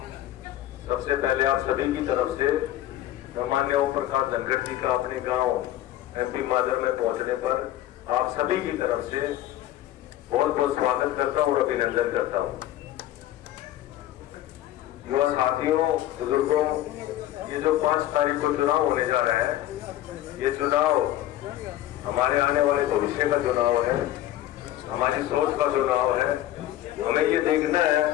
सबसे पहले आप सभी की तरफ से माननीय ओम प्रकाश धनखड़ जी का अपने गांव एमपी माजरा में पहुंचने पर आप सभी की तरफ से बहुत बहुत स्वागत करता हूं और अभिनंदन करता हूं। युवा साथियों, बुजुर्गों, ये जो 5 तारीख को चुनाव होने जा रहा है, ये चुनाव हमारे आने वाले भविष्य का चुनाव है, हमारी सोच का चुनाव है। हमें ये देखना है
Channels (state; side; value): quieter; right; 13.6 dB